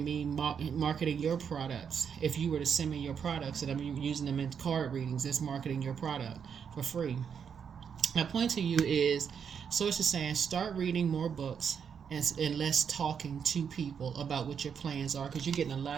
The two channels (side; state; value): left; quieter; 7.2 dB